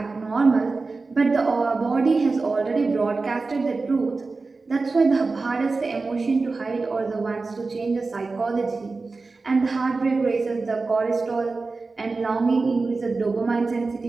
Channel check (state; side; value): quieter; left; 3.9 dB